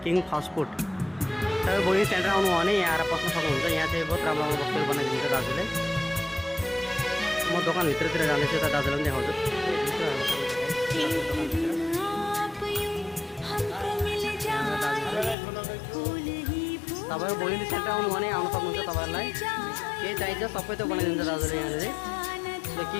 किङ फास्ट फुड। तपाईँ बहिनी सेन्टर आउनु हो भने यहाँ आएर पस्न सक्नुहुन्छ। यहाँ चाहिँ बहुत राम्रो राम्रो वस्तुहरू बनाइदिन्छ दाजुले। म दोकानभित्रतिर जाँदैछु, यता दाजुलाई पनि देखाउँछु। तपाईँ बहिनी सेन्टर आउनु भने आउनु सक्नुहुन्छ। तपाईँहरूलाई केही चाहिन्छ सबै त बनाइदिन्छ दाजुले यहाँनिर।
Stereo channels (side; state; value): right; drops out; at 15.4 s